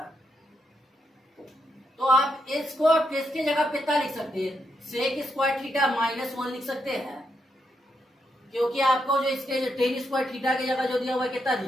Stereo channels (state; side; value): normal; both; correlation 0.81